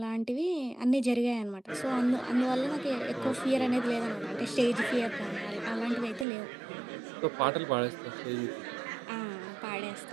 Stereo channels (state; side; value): drops out; left; at 6.2 s